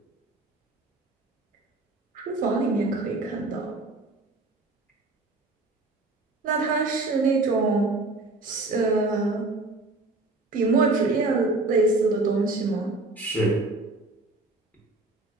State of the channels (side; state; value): left; quieter; 3.1 dB